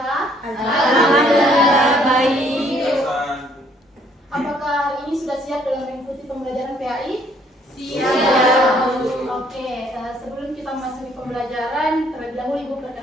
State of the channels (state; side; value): normal; both; correlation 0.64